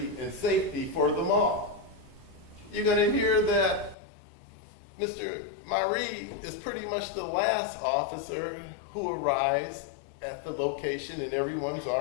and safety for the mall. You're going to hear that Mr. Marie is pretty much the last officer who arrives at the location, and everyone's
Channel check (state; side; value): drops out; right; at 4.0 s